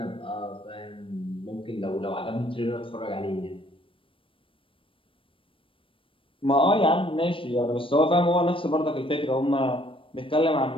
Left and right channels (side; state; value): right; late; 0.25 ms